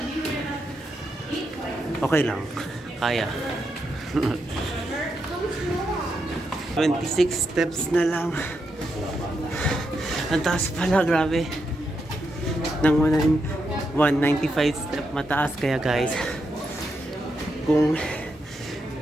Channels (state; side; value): normal; both; correlation 0.83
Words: okay lang, kaya. 26 steps na lang. Ang taas pala, grabe. Nang 195 step mataas, kaya guys, kung